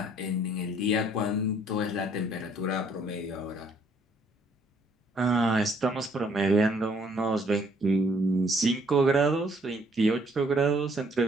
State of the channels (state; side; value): normal; both; correlation 0.64